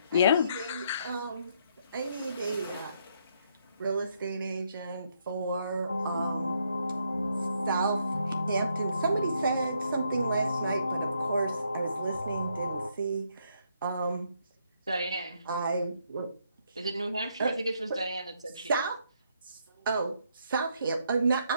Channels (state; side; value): inverted; both; correlation -0.74